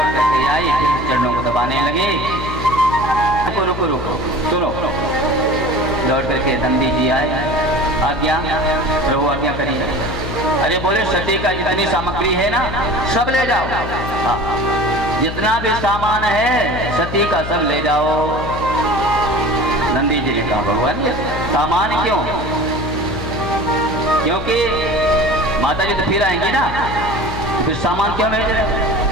करके आई, फिर चरणों को दबाने लगी। रुको रुको रुको, सुनो। लौट करके नंदी जी आए, आज्ञा प्रभु आज्ञा करिए। अरे बोले सती का जितनी सामग्री है ना सब ले जाओ, हाँ जितना भी सामान है सती का सब ले जाओ। नंदी जी ने कहा भगवान ये सामान क्यों? क्योंकि माता जी तो फिर आएंगी ना, फिर सामान क्यों भेज रहे?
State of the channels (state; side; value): noise; left; hum, 7 dB below the sound